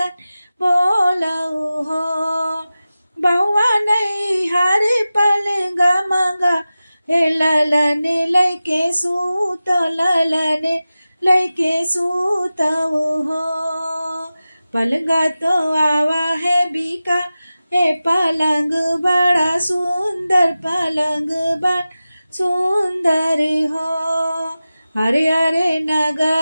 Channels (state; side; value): inverted; both; correlation -0.95